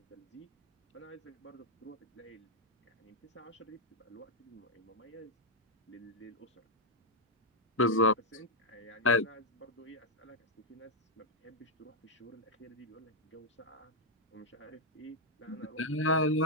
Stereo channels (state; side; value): normal; both; correlation 0.00